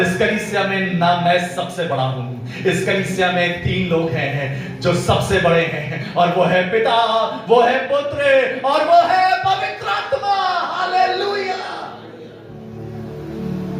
कलीसिया में ना मैं सबसे बड़ा हूं। इस कलीसिया में 3 लोग हैं जो सबसे बड़े हैं, और वो है पिता, वो है पुत्र और वो है पवित्र आत्मा। Hallelujah.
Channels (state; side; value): identical; both; correlation 1.00